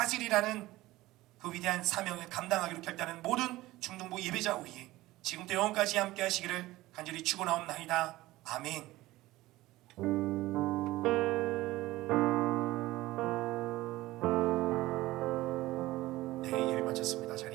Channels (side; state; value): left; quieter; 17.8 dB